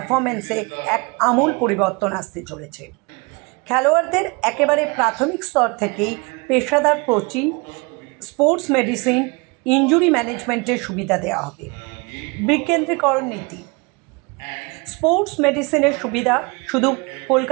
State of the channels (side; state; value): left; quieter; 28.9 dB